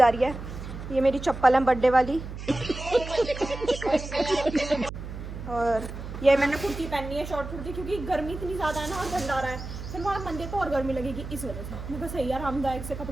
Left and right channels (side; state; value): right; noise; hum, 9 dB below the sound